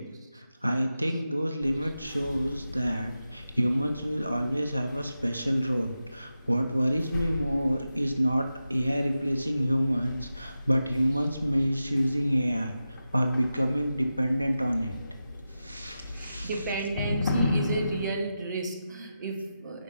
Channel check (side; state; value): both; inverted; correlation -0.91